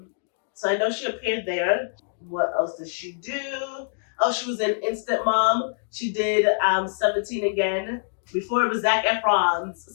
So I know she appeared there. What else did she do? Oh, she was in Instant Mom. She did 17 again. Before it was Zac Efron's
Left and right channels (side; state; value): right; silent; digital silence